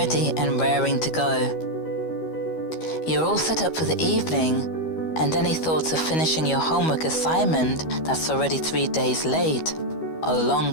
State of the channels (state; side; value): late; right; 13 ms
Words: and raring to go. You're all set up for the evening, and any thoughts of finishing your homework assignment that's already 3 days late are long